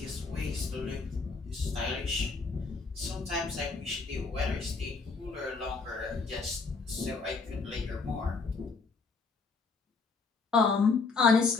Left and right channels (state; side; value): quieter; right; 4.4 dB